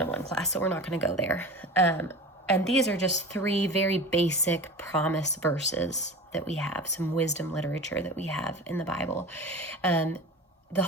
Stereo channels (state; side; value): normal; both; correlation 0.33